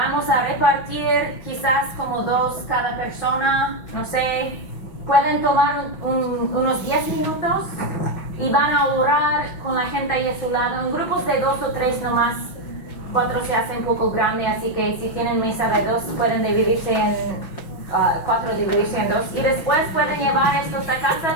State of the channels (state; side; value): late; right; 6.1 ms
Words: a repartir quizás como 2 cada persona, no sé. Pueden tomar unos 10 minutos y van a orar con la gente ahí a su lado, en grupos de 2 o 3 nomás. 4 se hace un poco grande, así que si tienen mesa de 2 pueden dividirse en 4 dividirse en 2 y después pueden llevar estos a casa